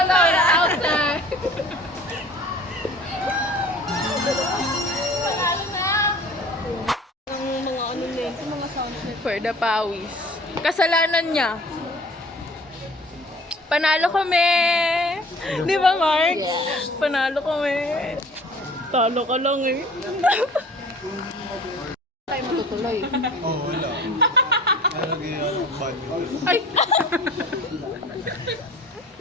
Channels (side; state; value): both; normal; correlation 0.47